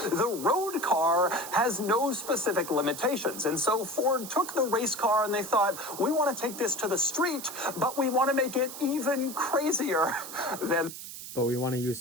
the road car has no specific limitations. And so Ford took the race car and they thought, we want to take this to the street, but we want to make it even crazier than... But we want to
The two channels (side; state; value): right; noise; hiss, 11 dB below the sound